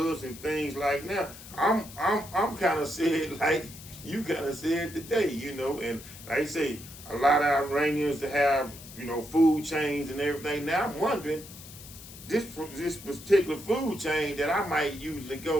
and things like now. I'm kind of saying like you kind of said today, you know, and like I say, a lot of Iranians that have, you know, food chains and everything. Now I'm wondering, this particular food chain that I might usually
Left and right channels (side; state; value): left; noise; hiss, 16 dB below the sound